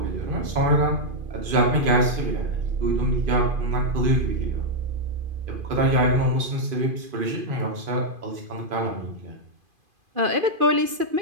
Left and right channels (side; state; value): left; late; 2.5 ms